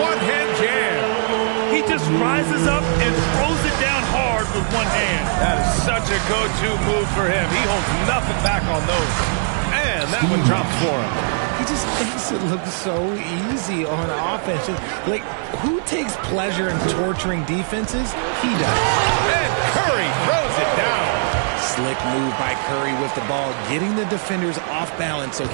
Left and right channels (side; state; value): left; silent; 59 dB below the other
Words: one-hand jam. He just rises up and throws it down hard with one hand. That is such a go-to move for him. He holds nothing back on those. And that one drops for him. He just makes it look so easy on offense. Like, who takes pleasure in torturing defenses? He does. And Curry throws it down. Slick move by Curry with the ball, getting the defenders off balance so